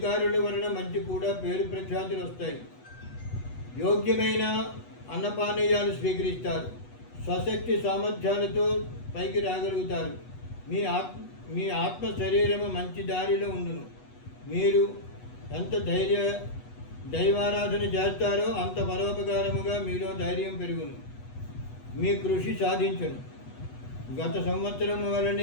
వలన మంచి కూడా పేరు ప్రఖ్యాతులు వస్తాయి. యోగ్యమైన అన్నపానీయాలు స్వీకరిస్తారు. స్వశక్తి సామర్థ్యాలతో పైకి రాగలుగుతారు. మీ ఆత్మ శరీరము మంచి దారిలో ఉండును. మీరు ఎంత దైవారాధన చేస్తారో అంత పరోపకారముగా మీలో ధైర్యం పెరుగును. మీ కృషి సాధించును. గత సంవత్సరము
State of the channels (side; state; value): right; late; 8.1 ms